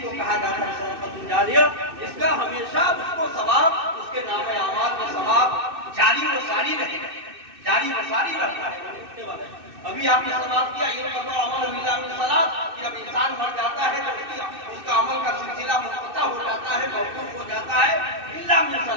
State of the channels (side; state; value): left; late; 2.6 ms